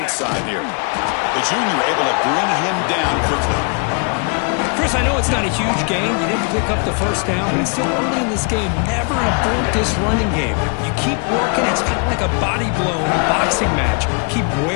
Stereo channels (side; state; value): right; quieter; 37.2 dB